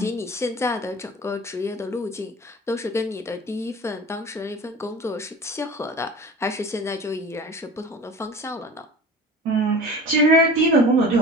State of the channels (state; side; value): normal; both; correlation 0.39